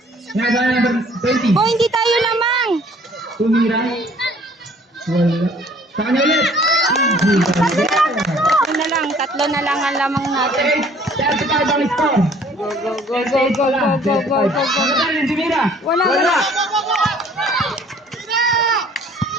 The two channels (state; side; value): normal; both; correlation 0.56